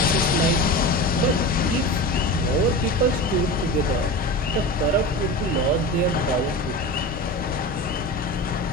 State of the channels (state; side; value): normal; both; correlation 0.29